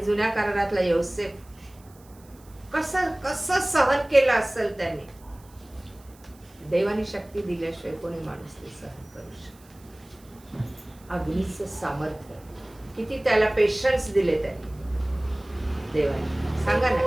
जुन्या करारातला योसेफ कसं कसं सहन केलं असेल त्यांनी. देवानी शक्ती दिल्याशिवाय कोणी माणूस ते सहन करू शकतो. अग्नीचं सामर्थ्य, किती त्याला पेशन्स दिले त्यांनी देवाने. सांगा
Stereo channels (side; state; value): right; noise; hiss, 27 dB below the sound